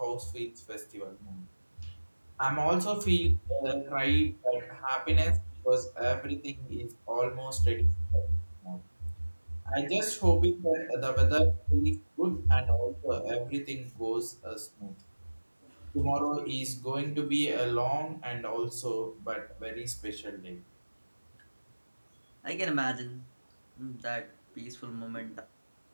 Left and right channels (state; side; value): inverted; both; correlation -1.00